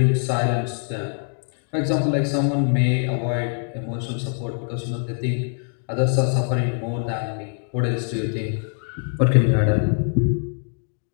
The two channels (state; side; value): silent; right; 57 dB below the other